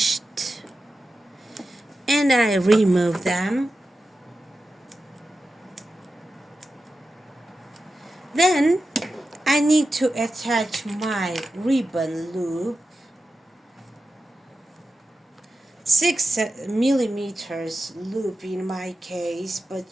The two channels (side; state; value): both; normal; correlation 0.92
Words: and I remove them. Then I need to attach my ribbon loop, 6 millimeters loop in my case, but